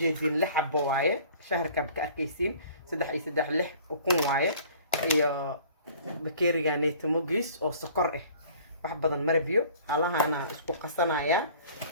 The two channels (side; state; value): both; inverted; correlation -0.50